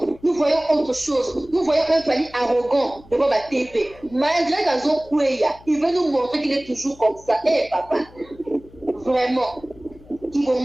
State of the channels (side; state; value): left; noise; hum, 23 dB below the sound